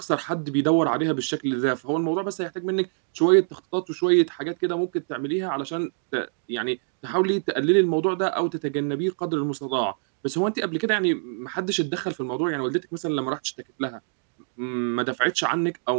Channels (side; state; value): left; silent; digital silence